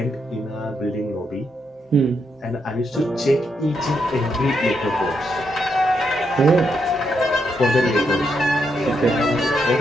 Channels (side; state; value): both; normal; correlation 0.80